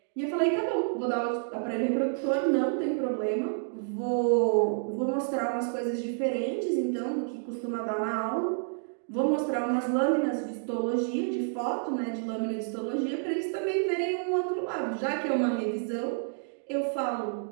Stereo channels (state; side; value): silent; left; digital silence